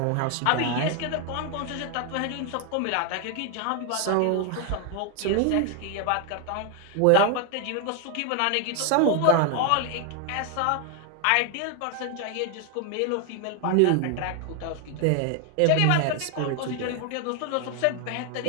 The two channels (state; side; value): different; both; correlation 0.00